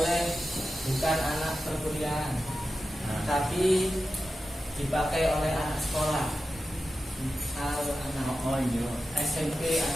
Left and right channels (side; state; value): both; normal; correlation 0.92